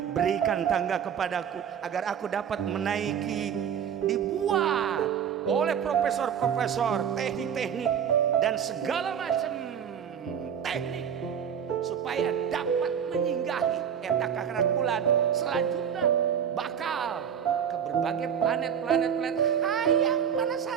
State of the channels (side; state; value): left; quieter; 8.2 dB